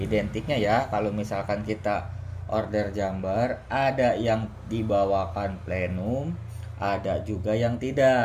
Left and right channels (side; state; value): both; identical; correlation 1.00